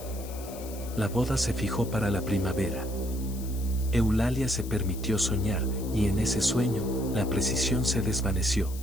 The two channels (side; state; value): left; noise; hiss, 16 dB below the sound